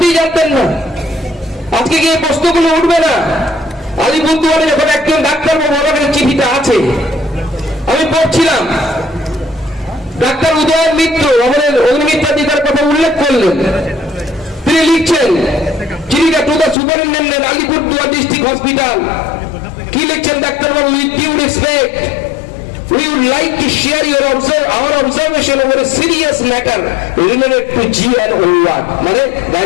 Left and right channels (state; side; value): drops out; right; at 16.8 s